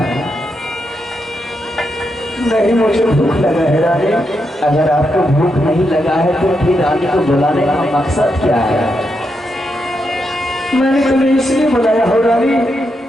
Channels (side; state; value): both; normal; correlation 0.83